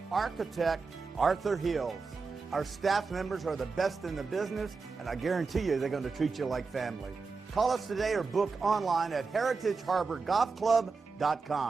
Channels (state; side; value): quieter; left; 4.5 dB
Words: architect Arthur Hills. Our staff members are the best in the business, and I guarantee you they're going to treat you like family. Call us today or book online at